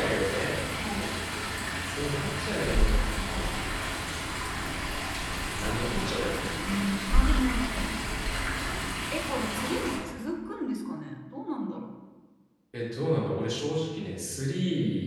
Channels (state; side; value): identical; both; correlation 1.00